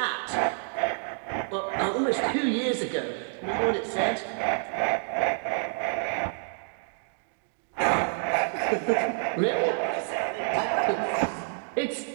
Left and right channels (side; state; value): left; silent; digital silence